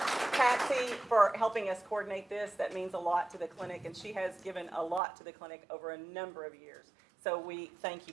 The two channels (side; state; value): left; drops out; at 5.0 s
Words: Patsy, for helping us coordinate this. That means a lot to the clinic, and she has given a lot to the clinic over a number of years. So we thank you,